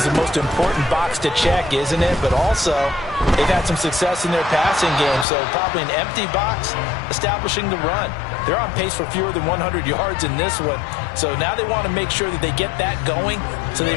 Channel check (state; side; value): drops out; right; at 5.2 s